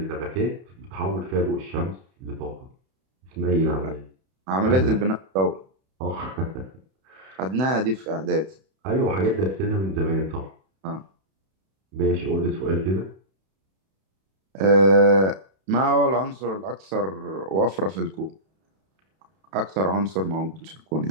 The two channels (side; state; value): left; late; 31 ms